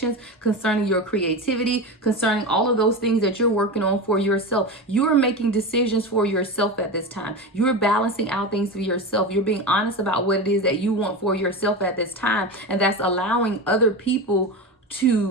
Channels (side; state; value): both; normal; correlation 0.23